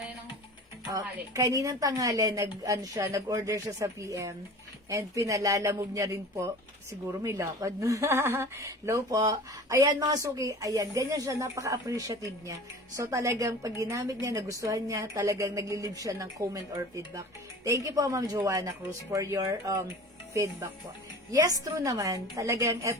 Kaninang tanghali, nag-order siya sa PM. And pinalalamove niya rin po. Siguro may lakad. Low po. Ayan mga suki, ayan, ganyan siya, napaka-appreciative niya. So talagang pag ginamit niya, nagustuhan niya, talagang naglilib siya ng comment or feedback. Thank you po, Ma'am Joanna Cruz, for your feedback po. Yes, true naman. Talagang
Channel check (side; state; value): both; normal; correlation 0.39